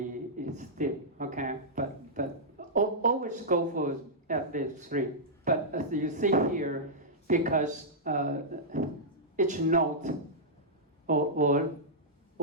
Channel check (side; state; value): both; normal; correlation -0.11